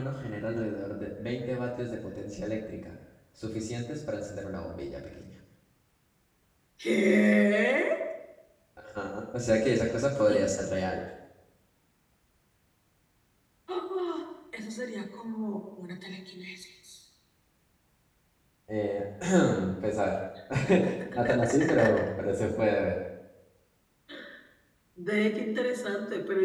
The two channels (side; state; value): both; identical; correlation 1.00